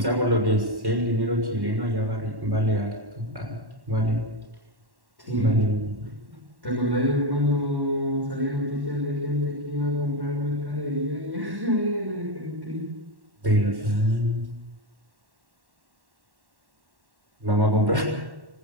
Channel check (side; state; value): left; late; 1.1 ms